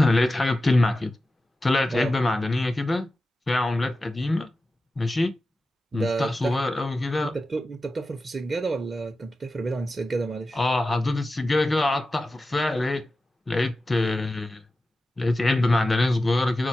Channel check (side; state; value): both; normal; correlation 0.94